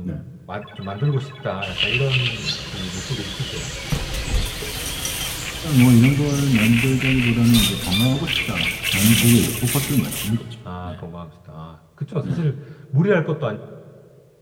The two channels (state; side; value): identical; both; correlation 1.00